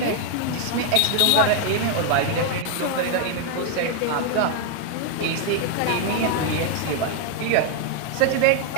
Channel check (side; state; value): both; different; correlation 0.00